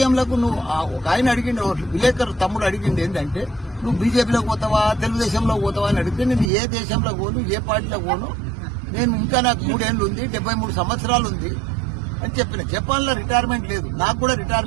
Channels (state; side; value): drops out; left; at 6.5 s